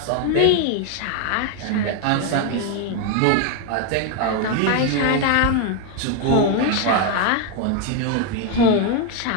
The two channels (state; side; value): different; both; correlation 0.01